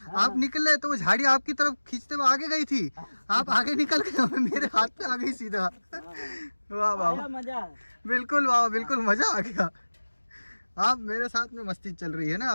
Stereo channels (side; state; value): both; inverted; correlation -1.00